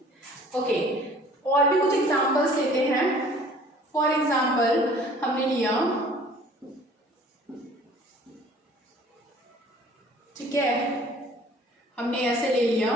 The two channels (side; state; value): both; normal; correlation 0.52